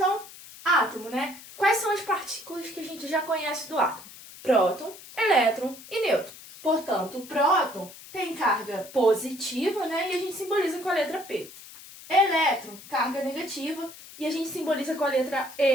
átomo, Quais são as partículas que a gente já conhece do átomo? Próton, elétron e nêutron. Portanto, o próton tem carga positiva, e a gente simboliza com a letra P. Elétron, carga negativa, e a gente simboliza com a letra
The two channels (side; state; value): left; noise; hiss, 17 dB below the sound